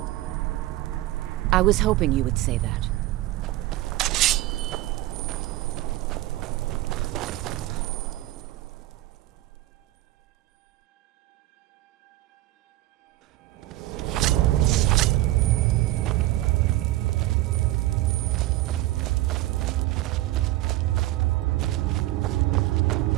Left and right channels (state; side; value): quieter; left; 16.5 dB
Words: I was hoping you would say that.